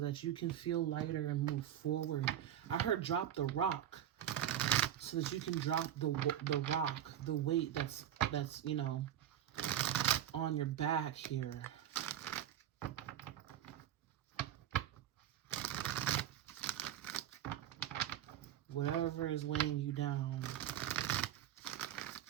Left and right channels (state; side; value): quieter; left; 11.1 dB